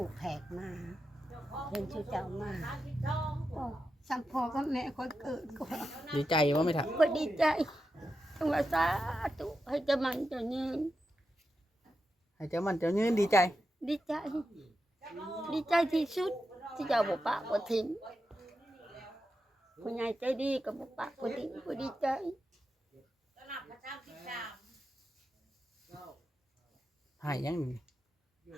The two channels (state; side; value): normal; both; correlation 0.88